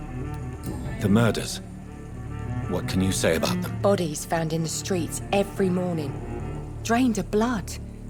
The murders. What can you say about them? Bodies found in the streets every morning. Drained of blood.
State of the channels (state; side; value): identical; both; correlation 1.00